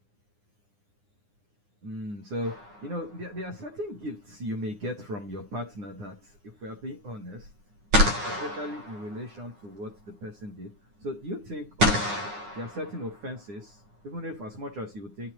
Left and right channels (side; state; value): left; late; 9.7 ms